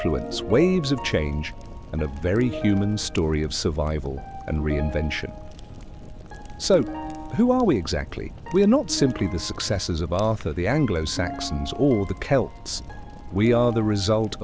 waves of change, and a very human story of survival and reinvention. So, who are we exactly? We are not simply the successors of Arthur, the Anglo-Saxons, or the Celts. We are the result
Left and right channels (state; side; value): identical; both; correlation 1.00